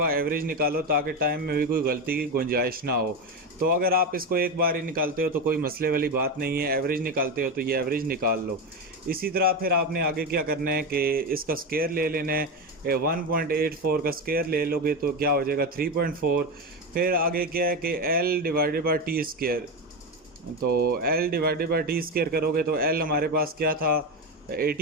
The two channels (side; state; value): both; normal; correlation 0.16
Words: एवरेज निकालो ताकि टाइम में भी कोई गलती की गुंजाइश ना हो। तो अगर आप इसको एक बार ही निकालते हो तो कोई मसले वाली बात नहीं है, एवरेज निकालते हो तो ये एवरेज निकाल लो। इसी तरह फिर आपने आगे क्या करना है कि इसका स्केयर ले लेना है, 1.84 का स्केयर ले लोगे तो क्या हो जाएगा, 3.4। फिर आगे क्या है कि L divided by T square. तो L divided by T square करोगे तो L हमारे पास क्या था,